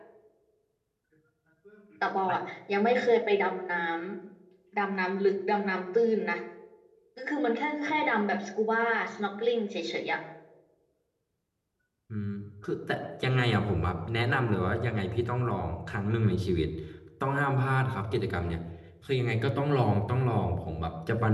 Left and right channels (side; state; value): both; identical; correlation 1.00